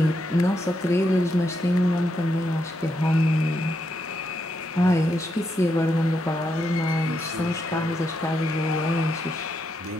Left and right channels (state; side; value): normal; both; correlation 0.81